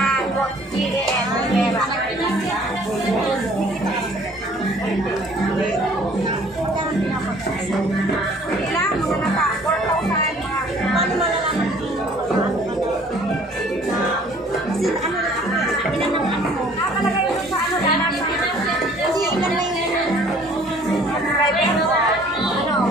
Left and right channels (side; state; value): both; normal; correlation 0.55